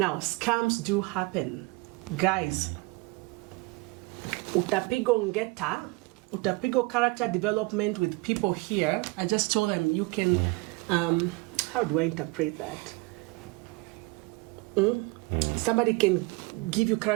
scams do happen. Guys, utapigo ngeta, utapigo character development with people here. I just told them you can, how do I interpret that? Somebody can give you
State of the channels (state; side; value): quieter; left; 23.9 dB